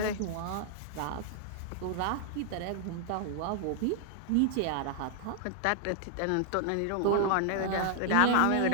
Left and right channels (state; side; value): different; both; correlation 0.00